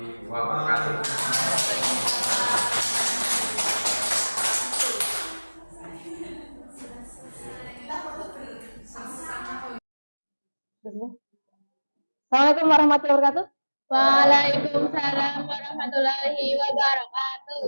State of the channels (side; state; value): both; inverted; correlation -1.00